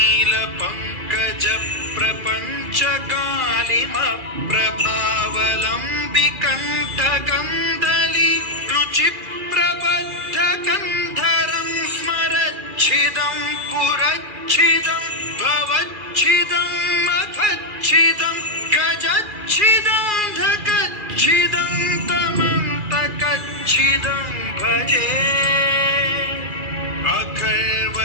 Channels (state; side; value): late; left; 2.4 ms